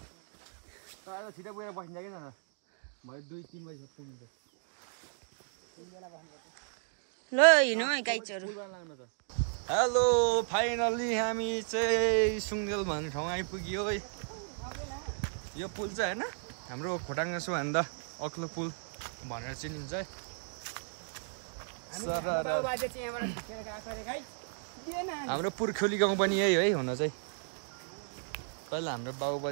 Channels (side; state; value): left; silent; digital silence